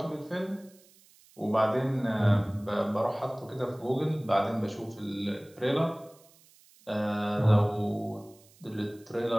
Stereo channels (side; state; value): right; noise; hiss, 28 dB below the sound